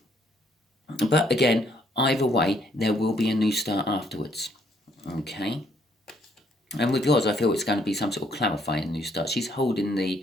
But again, either way, there will be a new start afterwards. Okay? And with yours, I feel it's going to be some sort of clarifying new start. She's holding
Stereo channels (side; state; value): both; normal; correlation 0.68